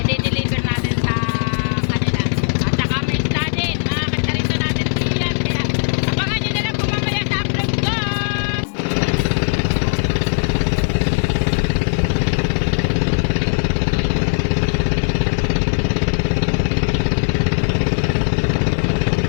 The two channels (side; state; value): right; silent; 58 dB below the other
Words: natin sa kanila. At saka may isda din. Mga kasarito natin diyan. Kaya abangan nyo na lang po mamaya sa upload ko.